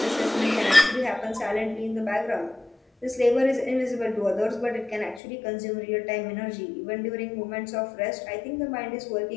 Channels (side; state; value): right; drops out; at 5.2 s